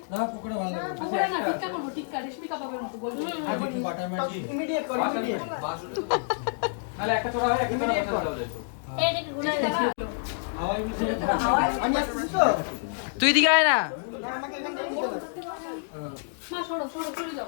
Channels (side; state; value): right; silent; digital silence